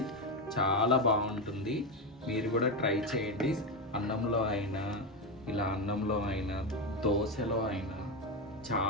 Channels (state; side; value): normal; both; correlation 0.12